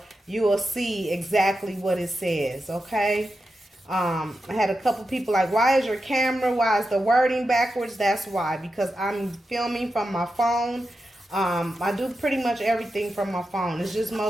you will see exactly what it says, okay? I had a couple people like, why is your camera, why is the wording backwards? That's why, because I'm filming from my phone. I do pretty much everything from my phone. It's just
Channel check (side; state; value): both; normal; correlation 0.89